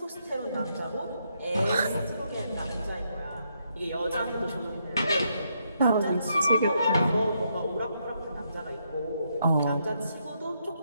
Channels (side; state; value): both; inverted; correlation -0.77